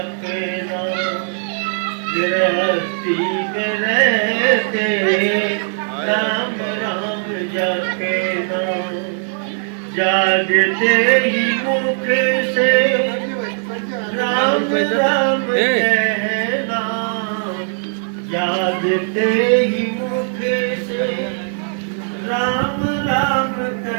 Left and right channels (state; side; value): silent; left; 58 dB below the other